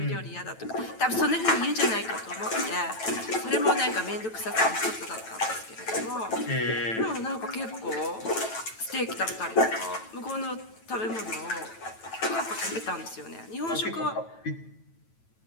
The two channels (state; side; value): late; right; 9.1 ms